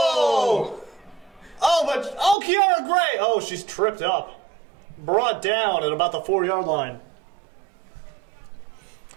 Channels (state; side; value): drops out; left; at 2.4 s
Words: Kiara Gray. Oh, she's tripped up. Brought down at about the 4-yard line.